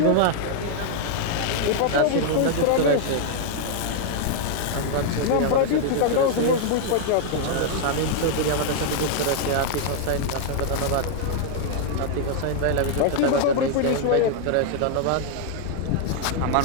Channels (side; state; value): both; different; correlation -0.01